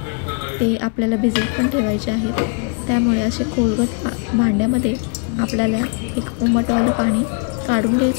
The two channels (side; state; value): right; quieter; 35.2 dB